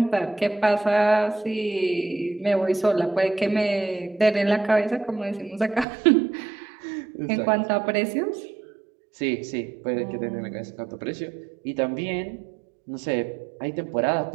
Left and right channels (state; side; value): drops out; left; at 5.9 s